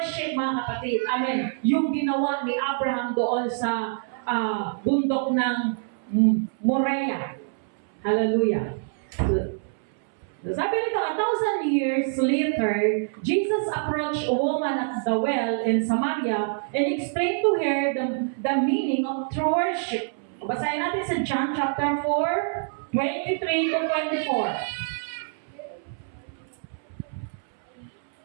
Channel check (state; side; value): silent; left; 61 dB below the other